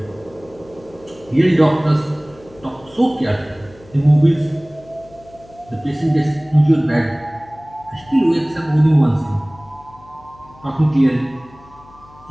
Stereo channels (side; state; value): left; noise; hum, 25 dB below the sound